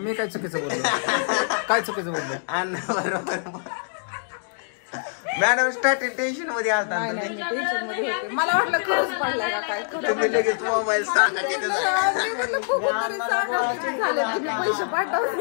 काय चुकीचं बोललो काय चुकीचं बोललो अण्णा बरोबर मॅडम स्टार्टिंग टेन्शन मध्ये आलता टेन्शन मध्ये होते. मला वाटलं खरंच पडलाय का काय तुम्ही लगेच मोबाईल सांगा तिथे जा. मी म्हणलं बघू तरी सांगा किती झाले तुम्ही पैसे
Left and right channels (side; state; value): right; silent; 62 dB below the other